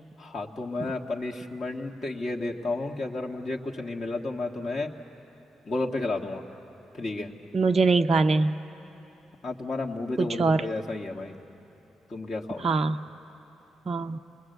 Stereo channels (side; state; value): both; normal; correlation 0.86